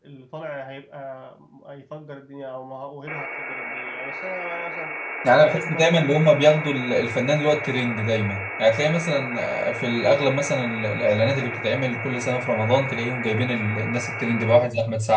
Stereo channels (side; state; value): both; identical; correlation 1.00